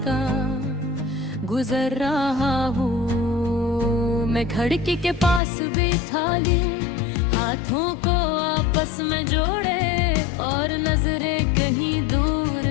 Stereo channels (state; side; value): drops out; right; at 5.4 s